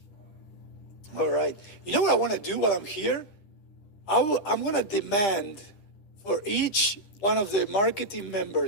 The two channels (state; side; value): late; right; 10 ms